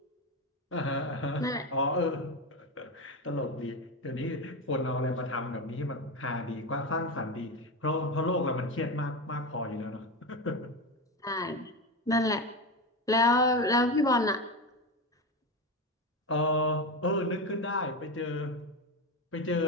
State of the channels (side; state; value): both; normal; correlation 0.18